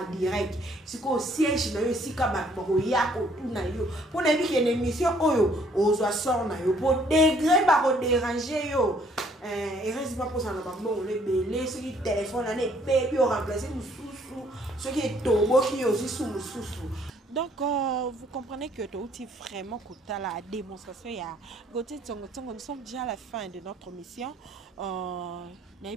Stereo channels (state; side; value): normal; both; correlation 0.63